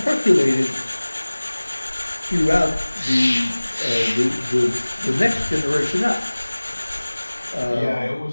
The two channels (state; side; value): inverted; both; correlation -1.00